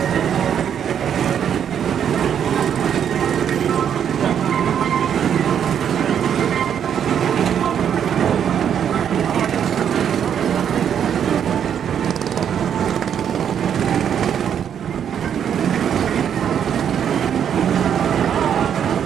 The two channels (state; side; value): quieter; left; 8.7 dB